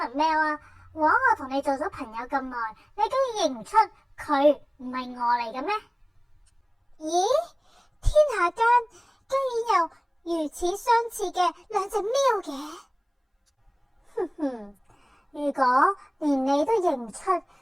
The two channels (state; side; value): identical; both; correlation 1.00